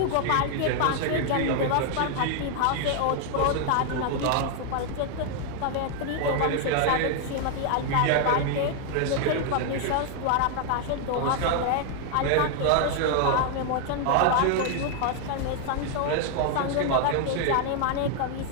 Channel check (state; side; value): different; both; correlation 0.00